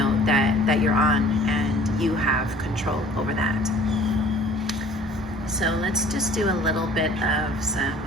that you're on, and you have control over that. So let's just do a little bit of some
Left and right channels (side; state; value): both; normal; correlation 0.50